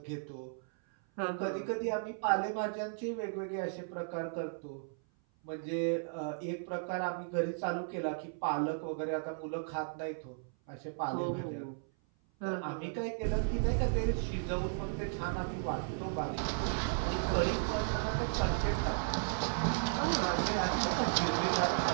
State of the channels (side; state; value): left; silent; 54 dB below the other